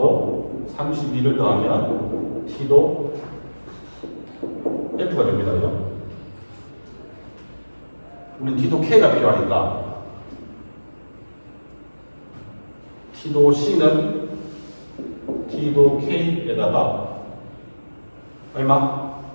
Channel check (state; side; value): inverted; both; correlation -1.00